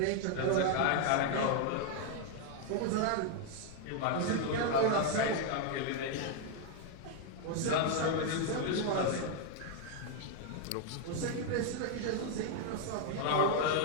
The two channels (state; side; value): different; both; correlation 0.00